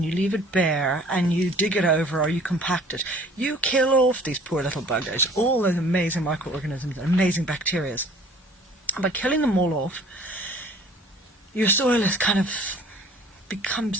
you leave it bare and you dig it over or you compact it, you kill off these poor little buggers, all those amazing microorganisms and amazing bacteria. And by killing them all off, your soil is kind of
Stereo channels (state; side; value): normal; both; correlation 0.51